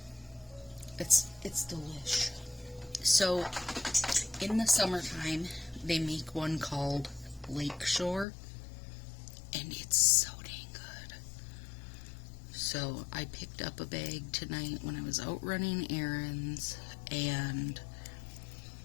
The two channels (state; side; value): drops out; right; at 8.2 s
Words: It's delish. So, in the summertime, they make one called Lakeshore, and it's so dang good. So, I picked up a bag tonight when I was out running errands, and